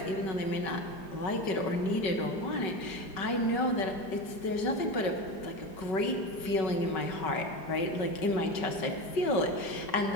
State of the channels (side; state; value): right; late; 5.3 ms